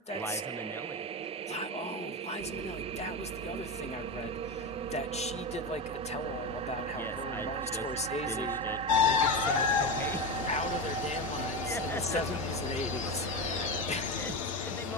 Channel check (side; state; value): both; normal; correlation 0.18